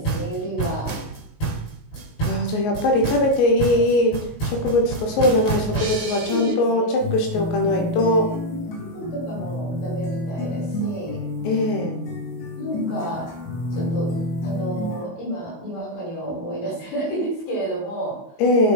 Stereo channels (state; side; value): late; right; 19 ms